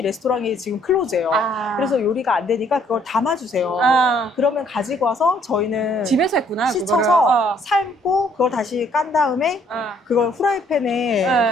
레스토랑이 지금 클로즈예요. 그래서 요리가 안 되니까 그걸 담아주세요. 그러면 가지고 와서 저희는 집에서 했구나. 씻어서 그거를. 삶고 그걸 다시 깐 다음에 그걸 후라이팬에 네.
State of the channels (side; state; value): both; normal; correlation 0.64